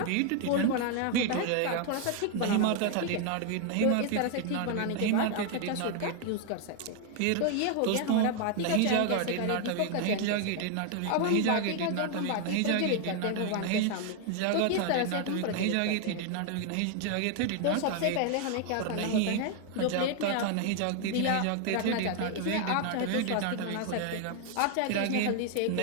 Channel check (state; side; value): different; both; correlation 0.00